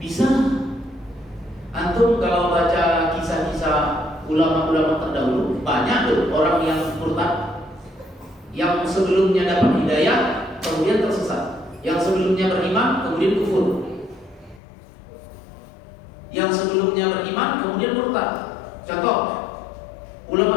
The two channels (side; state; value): right; drops out; at 14.6 s